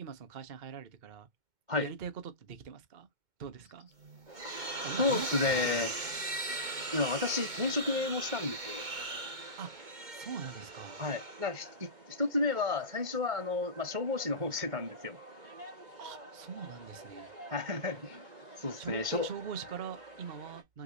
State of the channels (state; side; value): late; left; 2.1 ms